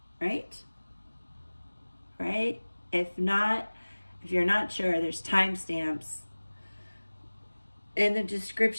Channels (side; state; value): both; inverted; correlation -1.00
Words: right? Right? If not, if you're not sure, there's timestamps in the